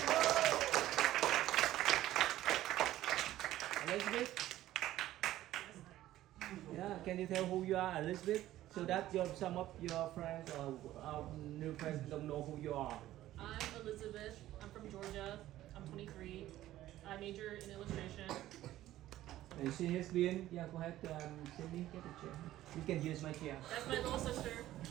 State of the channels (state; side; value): quieter; left; 14.4 dB